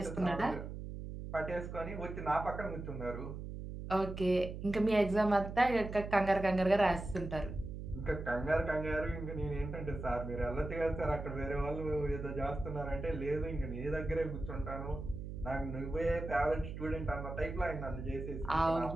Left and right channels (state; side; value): noise; right; hum, 8 dB below the sound